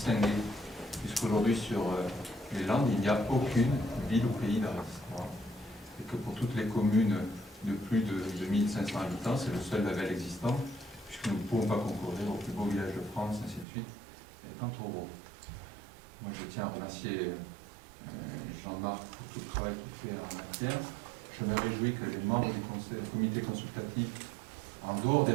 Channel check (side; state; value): left; drops out; at 13.7 s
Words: puisqu'aujourd'hui sur les Landes, il n'y a aucune ville ou pays d'art et d'histoire. Et que pour toutes les communes de plus de 2500 habitants, c'est le seul label existant, puisque nous ne pouvons pas concourir au plus beau village de France, ainsi de suite, étant trop gros. Moi, je tiens à remercier Jean-Marc pour tout le travail qu'il fait en matière. Je me réjouis que les membres du comité consultatif, en dehors des